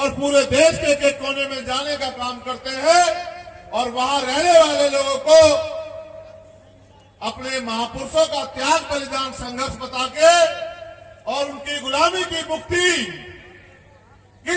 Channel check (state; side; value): identical; both; correlation 1.00